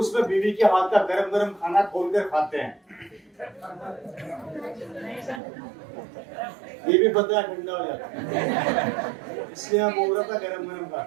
बीवी के हाथ का गरम गरम खाना खोलकर खाते हैं। ये भी पता है ठंडा हो जाता है, इसलिए हम बोल रहा था गरम गरम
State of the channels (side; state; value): left; drops out; at 5.4 s